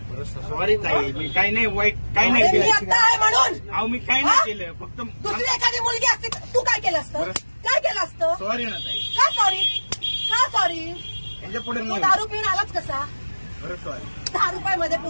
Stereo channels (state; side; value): inverted; both; correlation -1.00